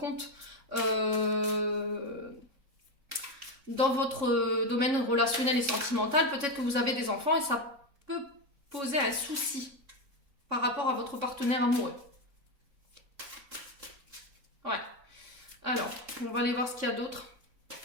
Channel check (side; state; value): left; late; 3.6 ms